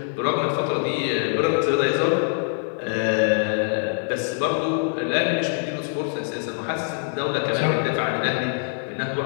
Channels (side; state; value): right; silent; digital silence